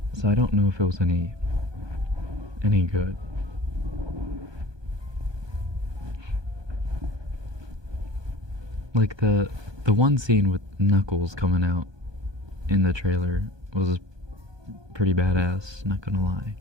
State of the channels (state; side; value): late; left; 1.2 ms